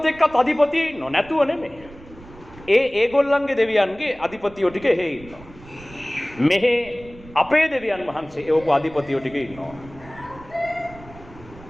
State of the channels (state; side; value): noise; right; rumble, 20 dB below the sound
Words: එක්කත් අධිපතිය ඉන්නව නැතුව නෙමෙයි. ඒගොල්ලන්ගේ දෙවියන්ගේ අධිපතියෝ ටික එහෙ ඉන්නවා. මෙහෙ අපේ දෙවියන් වහන්සේ එවපු අධිපතියෝ ටික ඉන්නවා.